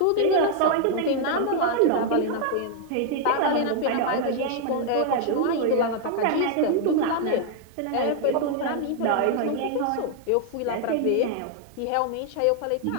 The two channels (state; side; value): different; both; correlation 0.00